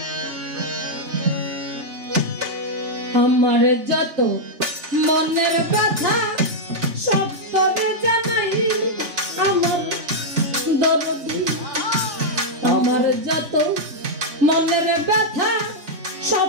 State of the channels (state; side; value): late; left; 3.4 ms